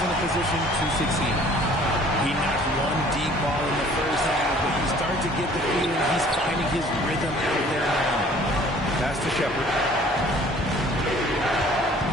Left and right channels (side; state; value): both; normal; correlation 0.53